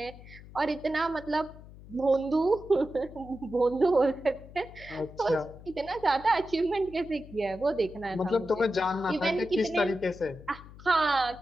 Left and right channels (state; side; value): noise; left; hum, 18 dB below the sound